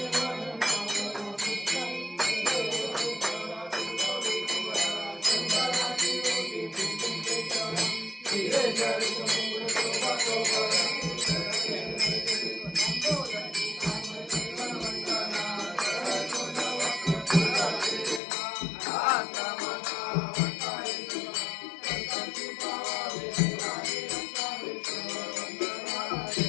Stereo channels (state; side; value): drops out; right; at 18.2 s